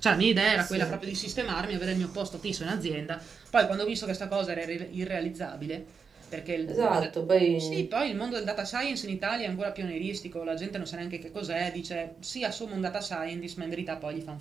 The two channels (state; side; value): quieter; left; 5.7 dB